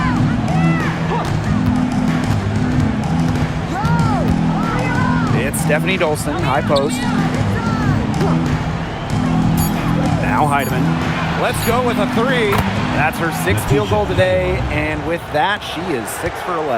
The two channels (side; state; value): both; identical; correlation 1.00